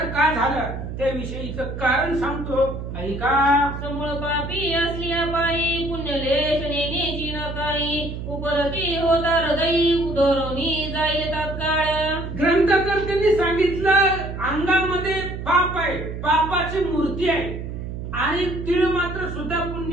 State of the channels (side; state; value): right; noise; hum, 7 dB below the sound